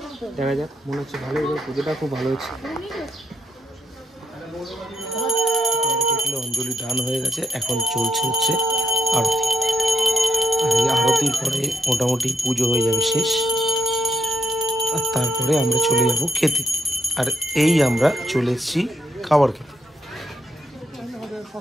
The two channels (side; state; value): both; normal; correlation 0.77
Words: দেখা যাক, মনে হচ্ছে ভালো, এবার পুজোটা খুব ভালো হচ্ছে। অঞ্জলি দান হয়ে গেছে, এখন চলছে হচ্ছে আরতি। আর এই আরতির পরে মোটামুটি পুজো হয়ে যাবে শেষ, আর তারপরে আমরা চলে যাব খেতে। আর এই আমরা চলে এসেছি খাবার খেতে।